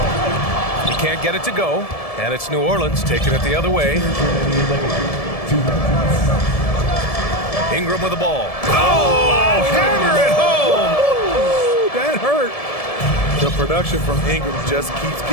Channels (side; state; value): right; late; 1.7 ms